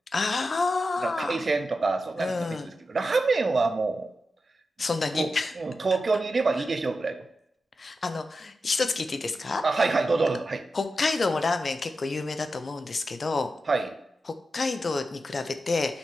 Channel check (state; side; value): normal; both; correlation 0.90